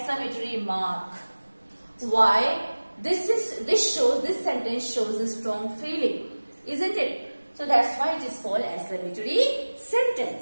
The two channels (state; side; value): inverted; both; correlation -1.00